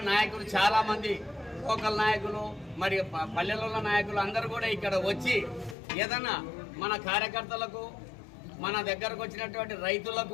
నాయకులు చాలామంది, లోకల్ నాయకులు, మరి పల్లెలలో నాయకులు అందరూ కూడా ఇక్కడ వచ్చి ఏదైనా మన కార్యకర్తలకు, మన దగ్గరకు వచ్చినటువంటి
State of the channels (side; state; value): right; drops out; at 5.8 s